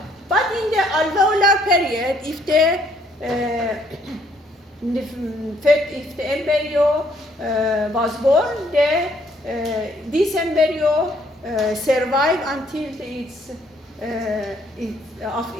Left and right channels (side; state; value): both; normal; correlation 0.66